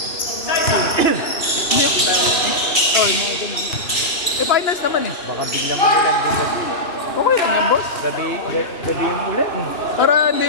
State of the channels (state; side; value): late; right; 2.7 ms